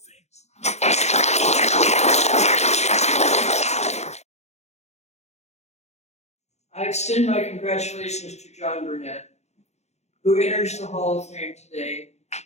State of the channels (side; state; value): right; late; 0.32 ms